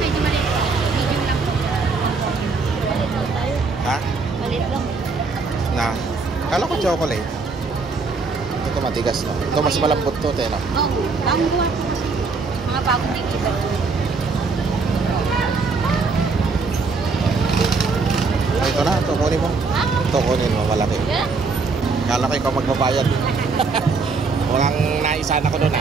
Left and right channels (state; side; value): quieter; left; 4.3 dB